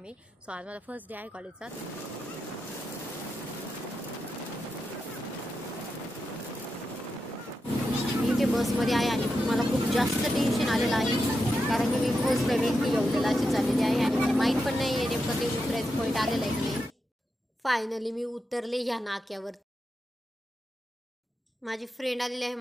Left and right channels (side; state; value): both; normal; correlation 0.87